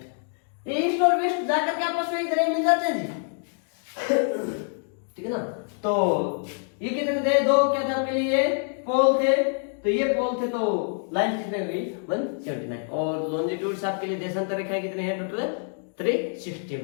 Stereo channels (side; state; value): right; silent; 59 dB below the other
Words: ईस्ट और वेस्ट जाकर के आपस में इधर मिल जाते हैं जी ठीक है ना। तो ये कितने थे दो क्या थे आपके लिए पोल थे, तो ये पोल थे तो लाइन कितने हुई 179 और लॉन्जिट्यूड्स आपके लिए देशांतर रेखाएं कितने हैं टोटल 360